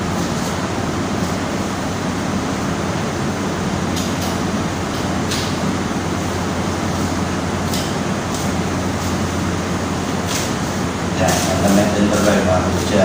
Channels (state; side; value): identical; both; correlation 1.00